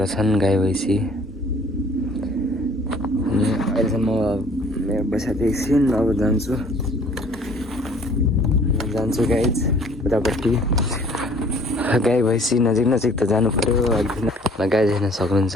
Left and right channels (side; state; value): both; normal; correlation 0.55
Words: छन् गाई भैँसी। अनि अहिलेसम्म म बसेको एकछिन, अब जान्छु गाइज उतापट्टि। गाई भैँसी नजिक त जानु पऱ्यो। अलिकति गाई हेर्न